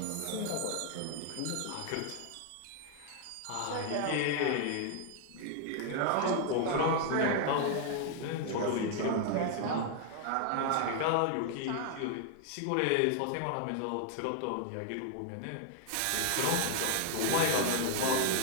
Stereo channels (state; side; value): different; both; correlation 0.00